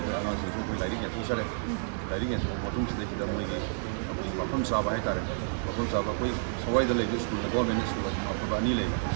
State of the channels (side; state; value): left; silent; 58 dB below the other